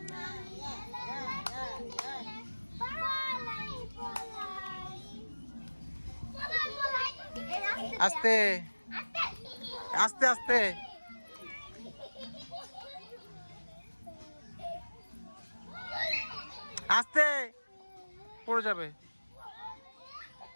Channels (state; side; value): inverted; both; correlation -1.00